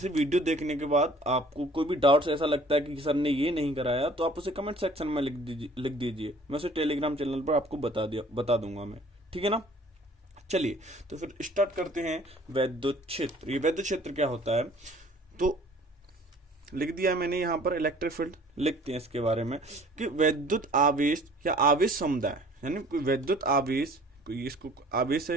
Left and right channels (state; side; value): normal; both; correlation 0.52